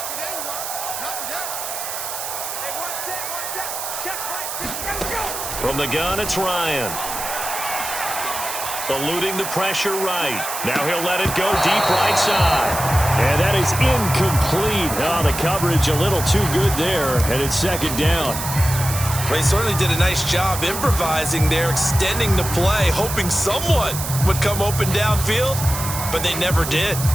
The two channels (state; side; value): noise; right; hiss, 6 dB below the sound